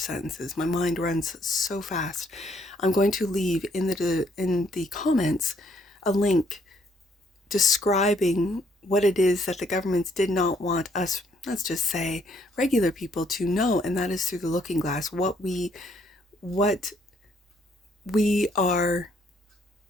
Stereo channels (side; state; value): both; normal; correlation 0.68